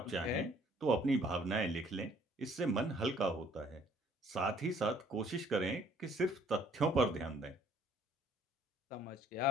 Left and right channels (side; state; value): both; normal; correlation 0.60